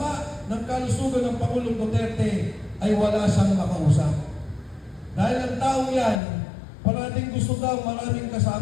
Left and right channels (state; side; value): drops out; right; at 6.2 s